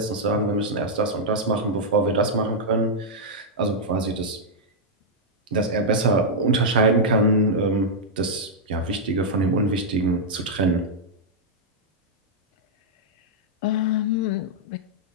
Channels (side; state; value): both; normal; correlation -0.06